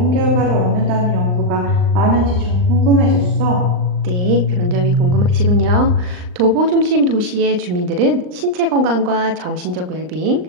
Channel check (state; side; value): late; left; 39 ms